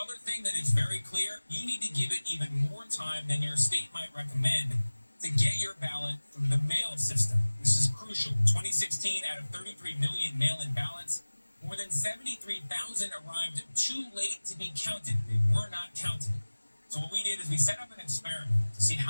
thing that is very clear, you need to give it even more time than your state might recommend to get your ballot through the mail system. This is crucial. In 2016, out of 33 million mail-in ballots, more than 73,000 arrived too late to be counted. They were not counted. So what we did is we set up an experiment to see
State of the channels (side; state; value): both; inverted; correlation -1.00